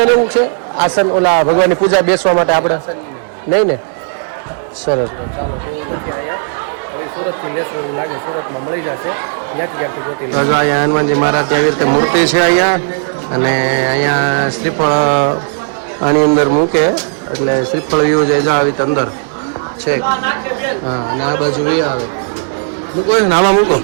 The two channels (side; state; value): left; silent; digital silence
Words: લેવું છે આસન ઓલા ભગવાનની પૂજા બેસવા માટે આપણે નહીં ને. સરસ લો ચાલો એવું નથી અહીંયા. હવે સુરતથી લેશું એવું લાગે. સુરતમાં મળી જશે ત્યાંથી ક્યાંથી ગોતી. તો જો અહીંયા હનુમાનજી મહારાજ આવી રીતે મૂર્તિ છે અહીંયા. અને અહીંયા શ્રીફળ આની અંદર મૂકે એટલે શ્રીફળ વ્યૂ જાય આવી રીતે અંદર છે. હા અને આ બાજુ એ આવે મૂકો ને આમાં મૂકો